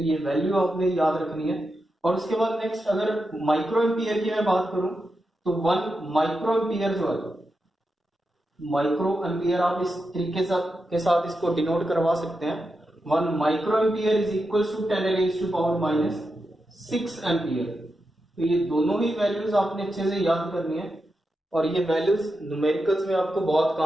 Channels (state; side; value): normal; both; correlation 0.88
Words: ये वैल्यू आपने याद रखनी है। और उसके बाद नेक्स्ट अगर माइक्रो एम्पियर की मैं बात करूं तो 1 माइक्रो एम्पियर जो है, माइक्रो एम्पियर आप इस तरीके के साथ इसको डिनोट करवा सकते हैं, 1 micro ampere is equals to 10 raise to power -6 ampere. तो ये दोनों ही वैल्यूज आपने अच्छे से याद करनी है, और ये वैल्यूज न्यूमेरिकल्स में आपको बहुत